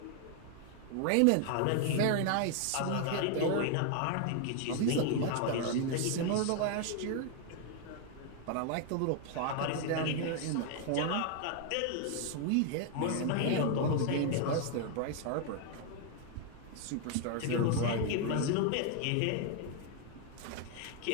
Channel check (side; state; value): both; different; correlation 0.00